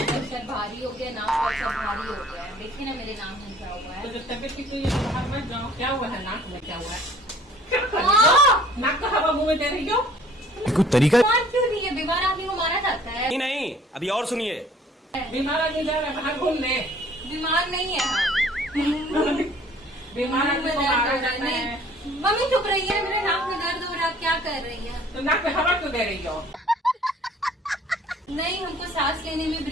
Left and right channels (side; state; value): both; normal; correlation 0.54